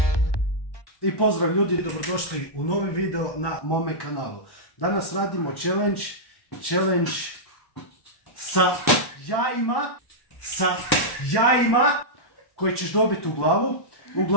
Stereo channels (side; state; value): right; late; 1.1 ms